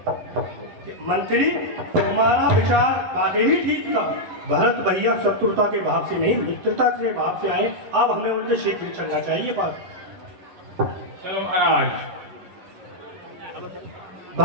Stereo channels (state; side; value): late; left; 11 ms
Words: मंत्री, तुम्हारा विचार वाकई ही ठीक था। भरत भैया शत्रुता के भाव से नहीं मित्रता के भाव से आए। अब हमें उनसे शीघ्र चलना चाहिए। बात चलो महाराज।